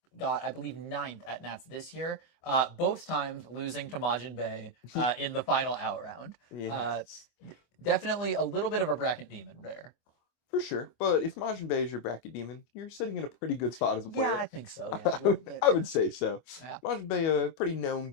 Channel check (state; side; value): late; right; 25 ms